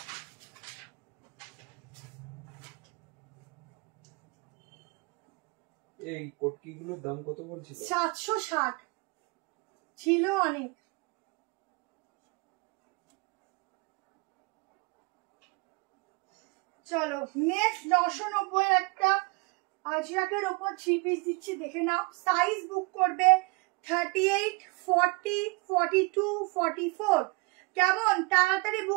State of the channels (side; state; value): left; quieter; 28.0 dB